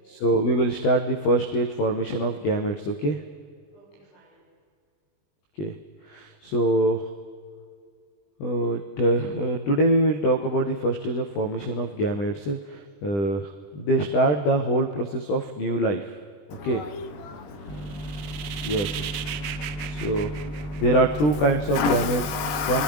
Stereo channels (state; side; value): late; right; 21 ms